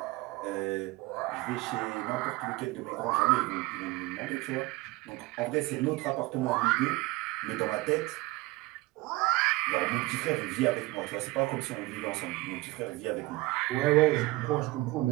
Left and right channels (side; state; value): left; quieter; 20.6 dB